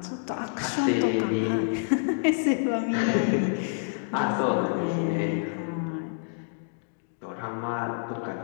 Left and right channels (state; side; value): silent; right; digital silence